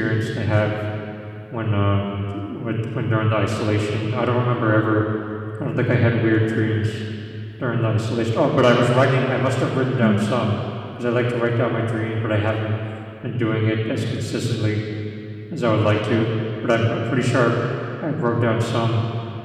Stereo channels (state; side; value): identical; both; correlation 1.00